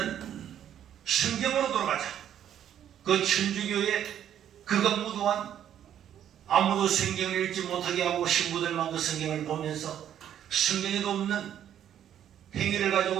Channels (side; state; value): left; quieter; 10.2 dB